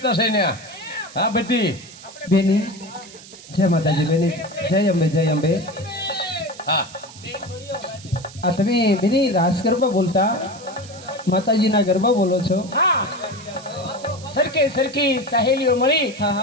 છે ને. હા બધી બેની જય માતાજી. બેની જય અંબે, જય અંબે. હા આ તમે બેની રાસ ગરબા બોલતા માતાજીના ગરબા બોલો છો? હા, સરખી સહેલીઓ મળી હા,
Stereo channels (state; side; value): noise; right; hiss, 18 dB below the sound